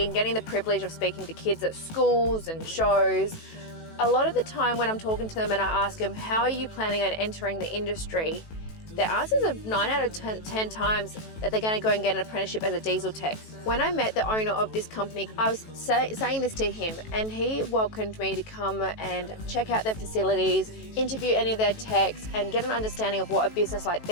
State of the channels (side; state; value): right; late; 18 ms